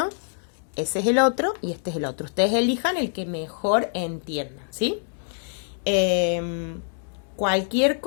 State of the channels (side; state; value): right; silent; digital silence